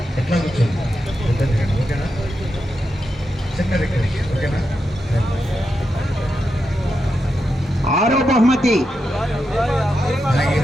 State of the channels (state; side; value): normal; both; correlation 0.86